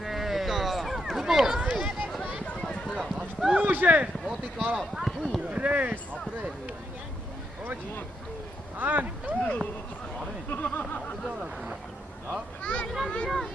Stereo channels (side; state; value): both; normal; correlation 0.80